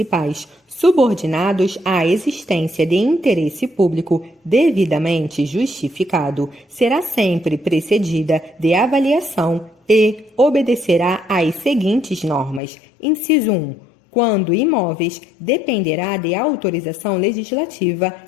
subordinados à existência de interesse público devidamente justificado será sempre precedida de avaliação e obedecerá às seguintes normas. Inciso 1. Quando imóveis, dependerá de autorização legislativa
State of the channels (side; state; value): right; drops out; at 12.6 s